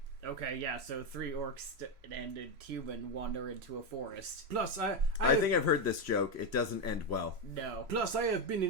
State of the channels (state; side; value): late; left; 3.0 ms